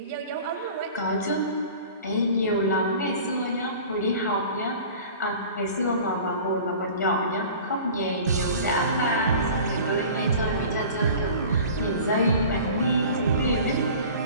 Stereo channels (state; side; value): inverted; both; correlation -0.42